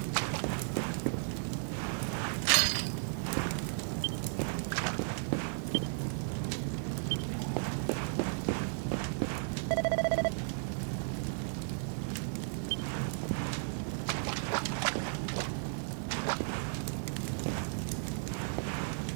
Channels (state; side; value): silent; left; digital silence